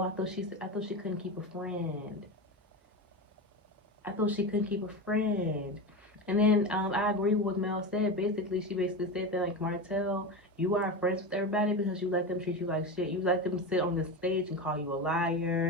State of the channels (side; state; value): both; normal; correlation 0.22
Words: I thought she couldn't keep a friend. I thought she couldn't keep a friend. And then I agree with what Mel said. Basically, she basically said that like Martell, you are friends with everybody because you let them treat you like shit. You let them sit on the stage and call you a